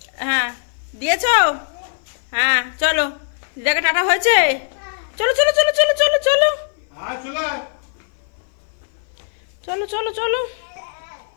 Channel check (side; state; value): right; silent; 57 dB below the other